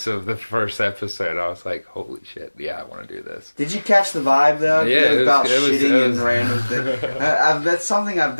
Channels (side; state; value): both; inverted; correlation -1.00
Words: of the first episode. I was like, holy shit, yeah, I want to do this. Did you catch the vibe though? Yeah, it was about it was, shitting it was, and random things. That's something I've